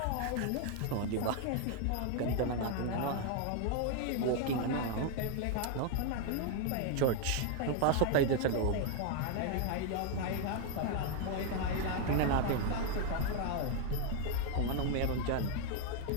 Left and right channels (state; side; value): different; both; correlation 0.01